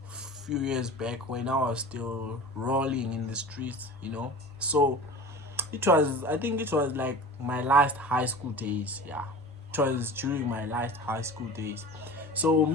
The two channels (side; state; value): both; normal; correlation 0.36